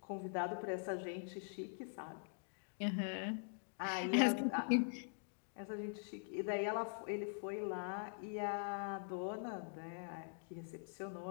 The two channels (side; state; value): right; silent; digital silence